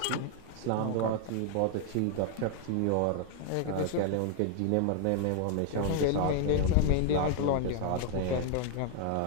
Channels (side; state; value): both; different; correlation 0.00